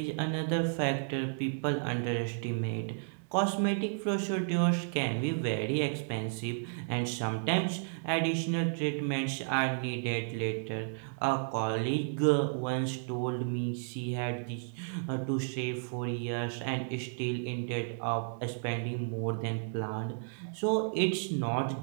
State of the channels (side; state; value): left; silent; digital silence